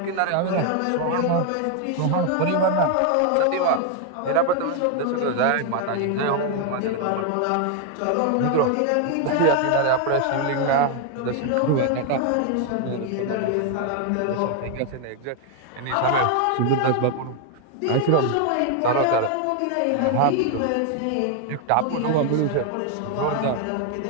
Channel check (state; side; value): different; both; correlation 0.01